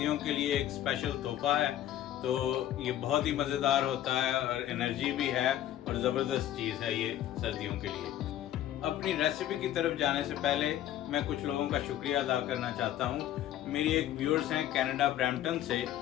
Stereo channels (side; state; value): right; quieter; 12.2 dB